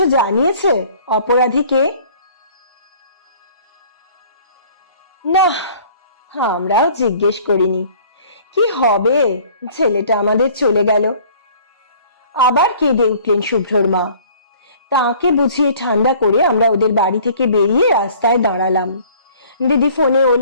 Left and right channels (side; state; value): both; inverted; correlation -0.52